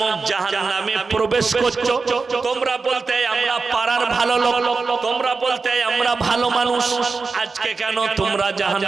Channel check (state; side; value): quieter; left; 4.4 dB